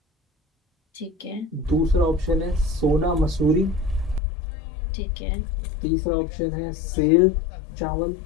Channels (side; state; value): right; drops out; at 4.2 s